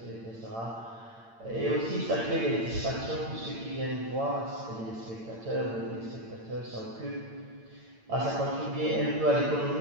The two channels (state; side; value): late; left; 8.8 ms